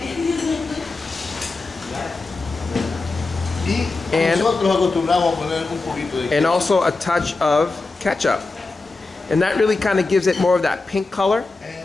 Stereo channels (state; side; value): quieter; right; 3.6 dB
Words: And also a touch of ketchup. And that really kind of gives it more of that pink color.